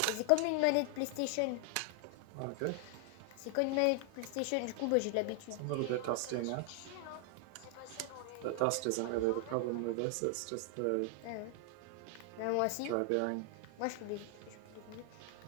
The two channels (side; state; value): both; different; correlation 0.00